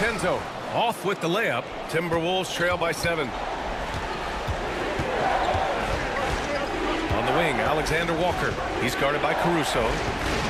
Off with the layup. Timberwolves trail by 7. On the wing, Alexander Walker. He's guarded by Caruso.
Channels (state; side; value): identical; both; correlation 1.00